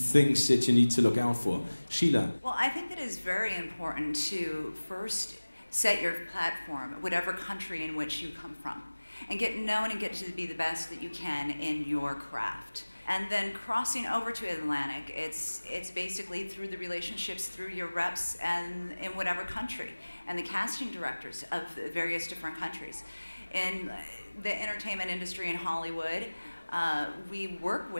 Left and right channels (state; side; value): inverted; both; correlation -1.00